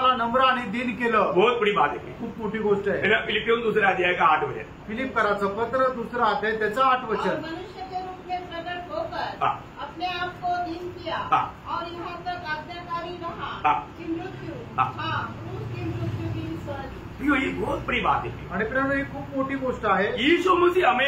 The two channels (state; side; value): identical; both; correlation 1.00